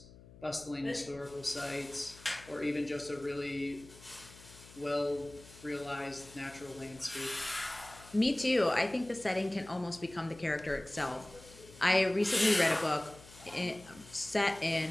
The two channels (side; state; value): left; noise; hum, 21 dB below the sound